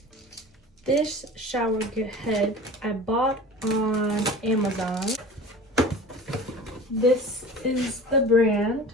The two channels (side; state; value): both; normal; correlation 0.38